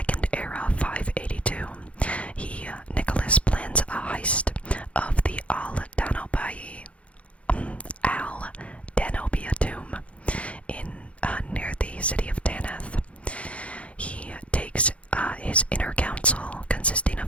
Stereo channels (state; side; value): late; right; 0.063 ms